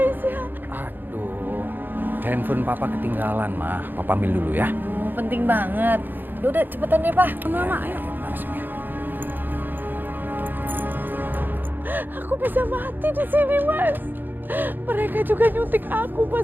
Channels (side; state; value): left; late; 0.091 ms